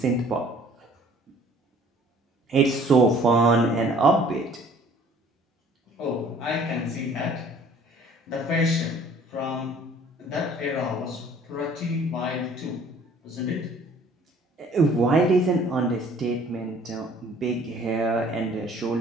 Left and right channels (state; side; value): normal; both; correlation 0.54